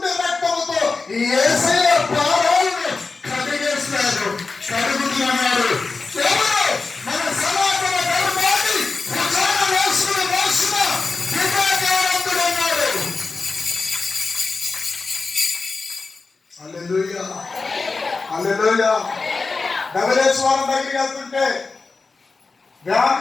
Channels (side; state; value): right; quieter; 4.1 dB